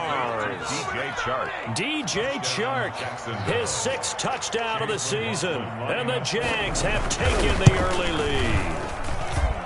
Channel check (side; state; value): both; identical; correlation 1.00